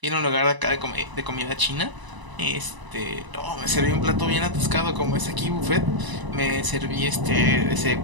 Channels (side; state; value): left; late; 1.0 ms